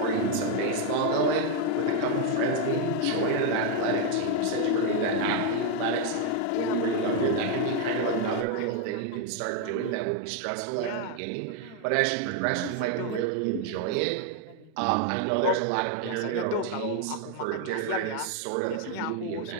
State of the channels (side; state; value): both; different; correlation 0.01